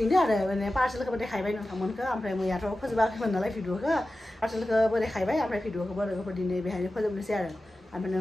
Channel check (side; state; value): both; normal; correlation 0.94